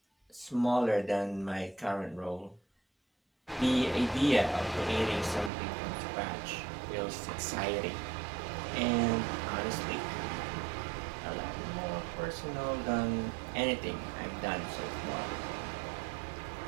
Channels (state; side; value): drops out; left; at 5.5 s